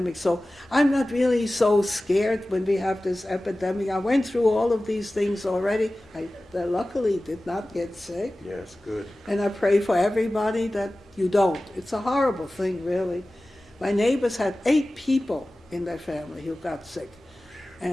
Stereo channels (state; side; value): normal; both; correlation 0.96